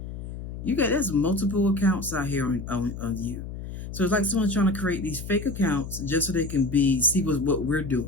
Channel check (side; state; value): left; noise; hum, 9 dB below the sound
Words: there's multiple accounts out here on you. So it's like someone trying to create these fake accounts just so they can see what we're